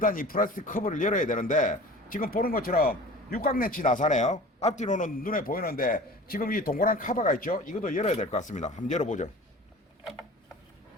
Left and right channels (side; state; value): both; normal; correlation 0.40